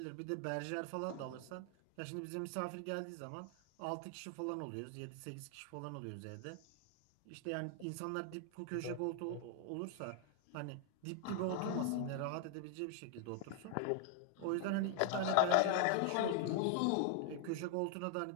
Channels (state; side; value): different; both; correlation 0.00